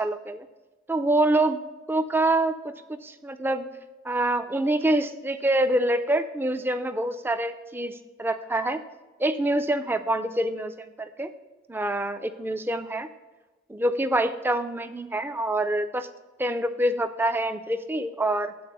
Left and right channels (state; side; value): normal; both; correlation 0.71